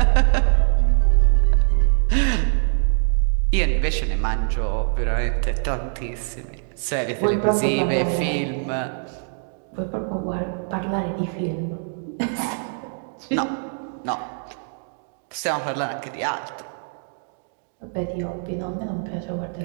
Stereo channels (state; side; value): silent; left; digital silence